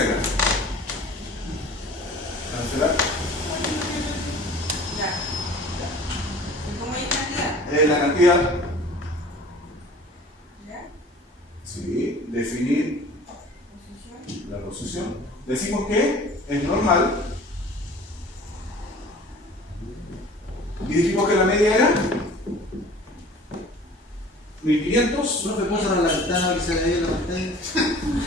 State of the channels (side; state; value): both; normal; correlation 0.46